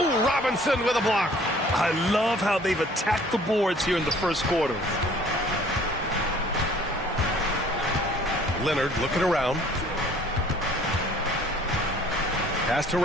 Robinson with a block. I love how they've attacked the boards here in the first quarter. Leonard looking around. Pass to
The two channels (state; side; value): normal; both; correlation 0.55